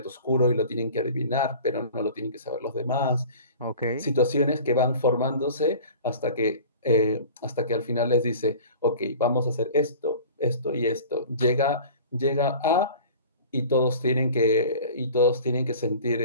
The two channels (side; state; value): both; inverted; correlation -0.42